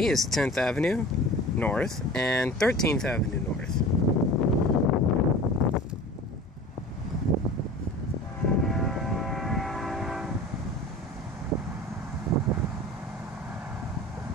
is 10th Avenue North and 13th Avenue North.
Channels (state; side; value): normal; both; correlation 0.39